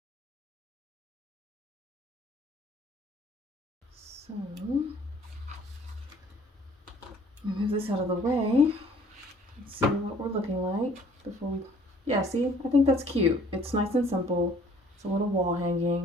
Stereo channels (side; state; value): both; normal; correlation 0.56